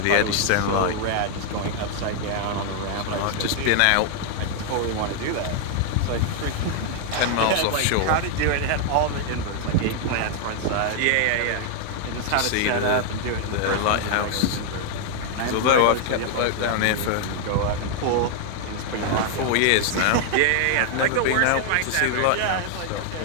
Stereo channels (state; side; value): different; both; correlation 0.00